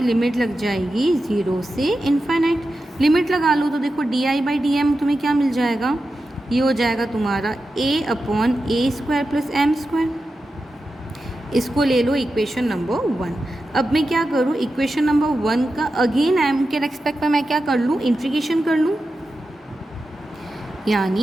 लिमिट लग जाएगी 0 से इनफाइनाइट। लिमिट लगा लो तो देखो di/dm तुम्हें क्या मिल जाएगा, ये हो जाएगा तुम्हारा a/a² + m²। इसको ले लो इक्वेशन नंबर 1। अब मैं क्या करूँ, इक्वेशन नंबर 1 का अगेन m के रेस्पेक्ट में मैं क्या कर लूँ, इंटीग्रेशन कर लूँ,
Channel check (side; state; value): both; normal; correlation 0.91